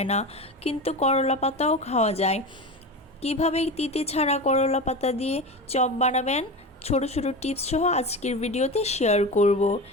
না, কিন্তু করলা পাতাও খাওয়া যায়। কিভাবে তিতে ছাড়া করলা পাতা দিয়ে চপ বানাবেন, ছোট ছোট টিপস সহ আজকের ভিডিওতে শেয়ার করব।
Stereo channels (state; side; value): normal; both; correlation 0.25